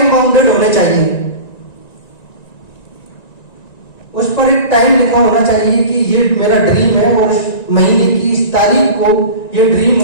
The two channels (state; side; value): late; right; 1.9 ms